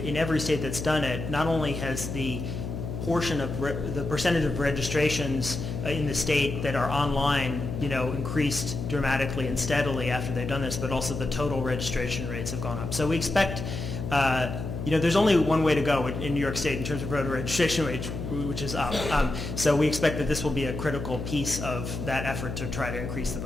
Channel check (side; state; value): left; noise; hum, 6 dB below the sound